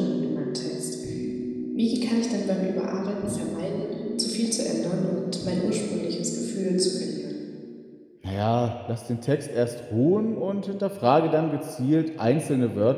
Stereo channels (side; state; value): both; identical; correlation 1.00